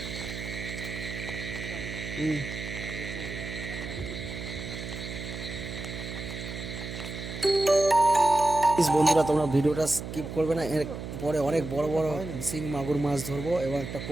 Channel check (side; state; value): right; noise; hum, 8 dB below the sound